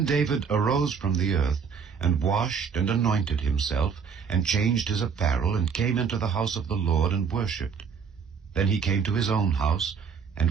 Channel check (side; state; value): left; quieter; 6.3 dB